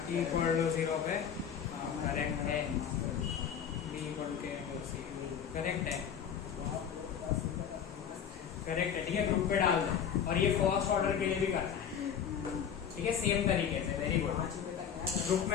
equal to zero पे करेक्ट है, B equal to C correct है, करेक्ट है। ठीक है, ग्रुप पे डाल दो और ये फर्स्ट ऑर्डर के लिए भी करना है। ठीक है, सेम तरीके से। वेरी गुड, ग्रुप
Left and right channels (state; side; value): quieter; right; 8.1 dB